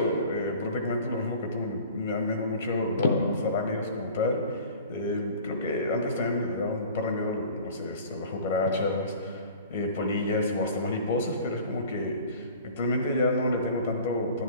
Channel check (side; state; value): both; inverted; correlation -0.44